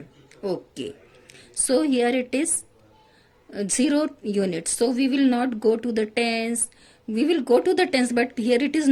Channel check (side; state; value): both; identical; correlation 1.00